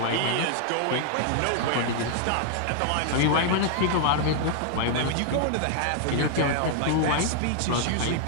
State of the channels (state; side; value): different; both; correlation 0.00